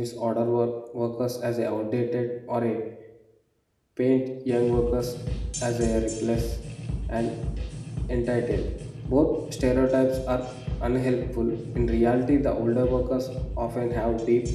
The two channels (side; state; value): both; identical; correlation 1.00